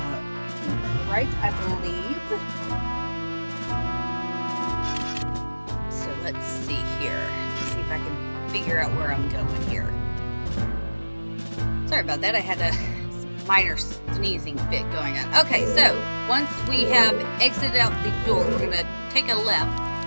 right, I believe. Let's see here. Let's see if I can figure out where I'm going here. Sorry about that. I had a minor sneezing fit going on. Okay, so once we have exited out the door, we're going to take a left.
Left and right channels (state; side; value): inverted; both; correlation -1.00